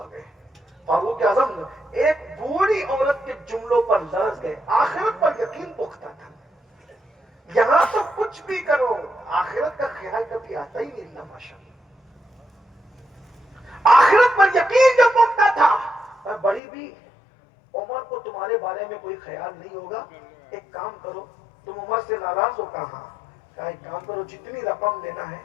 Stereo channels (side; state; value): right; drops out; at 16.6 s